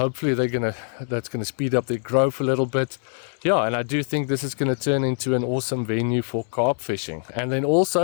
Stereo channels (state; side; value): silent; right; 63 dB below the other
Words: that's gonna speed up their growth a little bit. Yeah, and I do think this is gonna turn into an awesome venue for carp fishing. And then